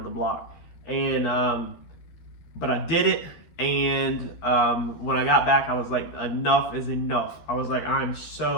the block. And but I did it, and when I got back, I was like, enough is enough. I was like, I'm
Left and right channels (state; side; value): late; right; 13 ms